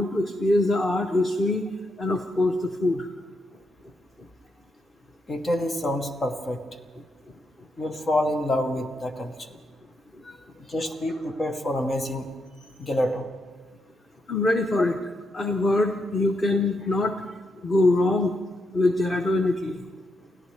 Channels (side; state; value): both; normal; correlation 0.81